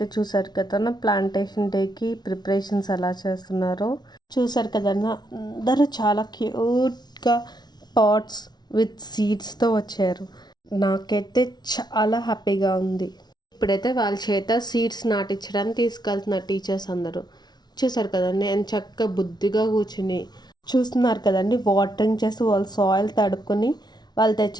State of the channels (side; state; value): right; late; 0.20 ms